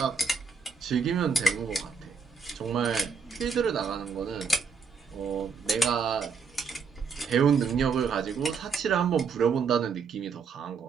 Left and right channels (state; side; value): quieter; left; 5.5 dB